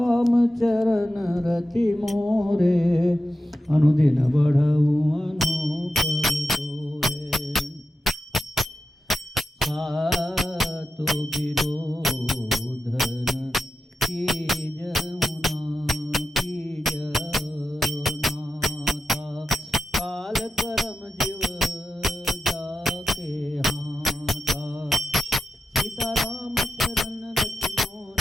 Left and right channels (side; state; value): both; normal; correlation 0.90